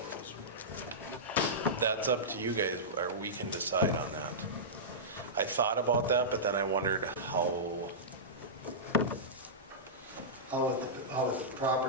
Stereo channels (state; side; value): normal; both; correlation -0.16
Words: or whatever? that's up to you guys, or we can decide on that. I thought about that, but then I wondered how, How would the